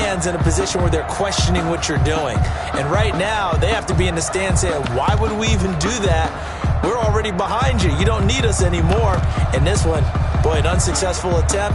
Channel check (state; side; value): identical; both; correlation 1.00